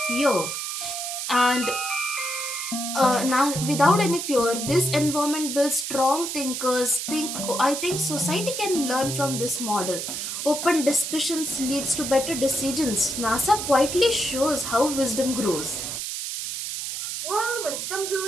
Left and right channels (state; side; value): noise; right; hiss, 4 dB below the sound